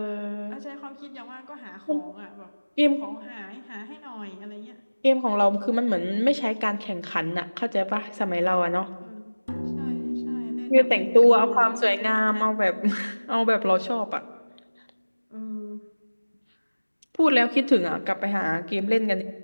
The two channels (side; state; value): both; inverted; correlation -1.00